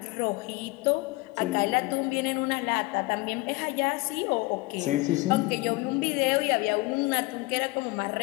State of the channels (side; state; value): right; quieter; 23.0 dB